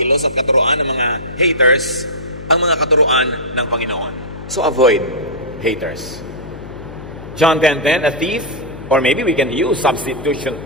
at katuruan ng mga haters ang mga katuruan ng Panginoon. So avoid haters. John 10:10, a thief, or maybe we can use substitution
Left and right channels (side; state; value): left; noise; hum, 13 dB below the sound